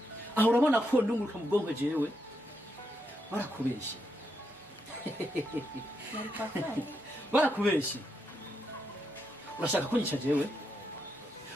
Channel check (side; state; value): both; normal; correlation 0.82